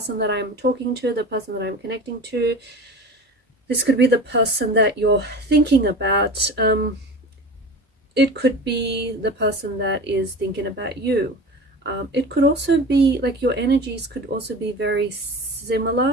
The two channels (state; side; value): normal; both; correlation 0.34